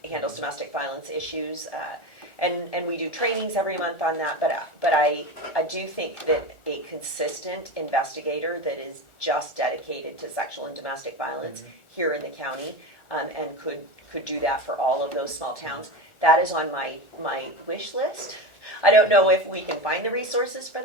handles domestic violence issues. And we do trainings every month on that. But I do think that a consistent investigator that is just dedicated to sexual and domestic violence here in the county and could do that for all of those small towns, that is on my wish list. I don't know if we can find the resources for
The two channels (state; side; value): late; right; 1.4 ms